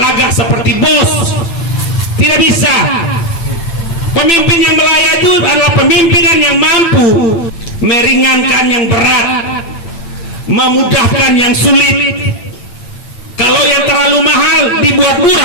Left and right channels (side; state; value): right; late; 8.9 ms